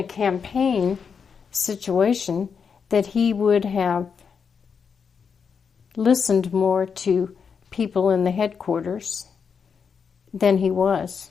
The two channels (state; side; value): quieter; right; 6.2 dB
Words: campaign situation that he would have listened more to people in the headquarters than he was.